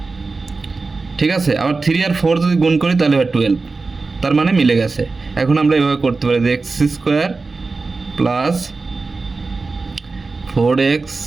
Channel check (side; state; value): left; quieter; 3.9 dB